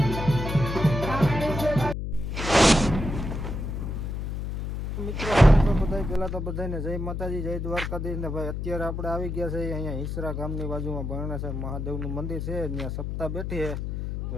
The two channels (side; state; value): left; noise; hum, 4 dB below the sound